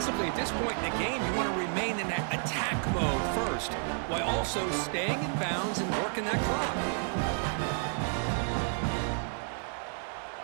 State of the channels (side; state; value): left; silent; 56 dB below the other